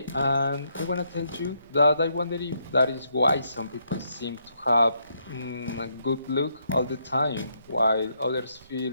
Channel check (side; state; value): both; inverted; correlation -0.75